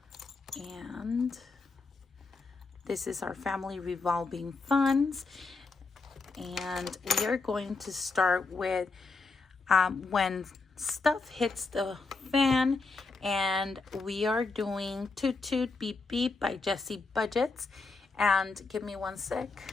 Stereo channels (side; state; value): right; quieter; 4.0 dB